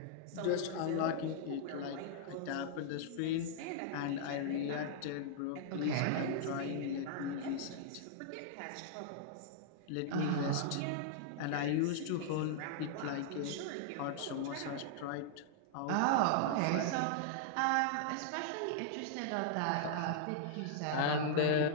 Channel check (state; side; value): different; both; correlation -0.01